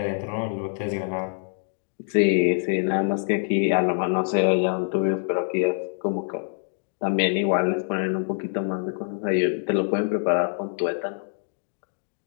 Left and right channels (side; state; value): right; silent; 62 dB below the other